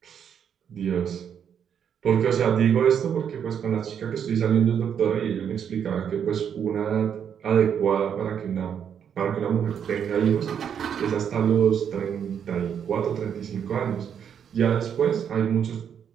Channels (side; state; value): left; quieter; 8.2 dB